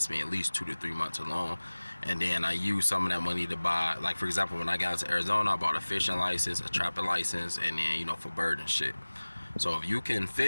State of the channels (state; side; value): inverted; both; correlation -1.00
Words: me at least 2 to 3 months alone. And then I use some of that money to buy, for example, when I got into Arizona, I bought a fishing license, a trapping license, and then, for bird and shit. So if you can